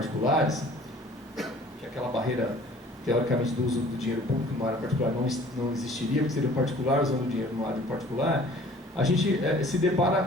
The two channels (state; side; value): normal; both; correlation 0.50